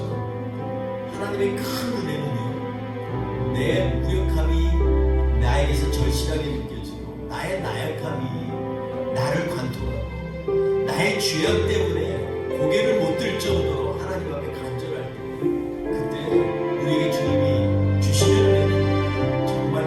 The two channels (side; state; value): both; identical; correlation 1.00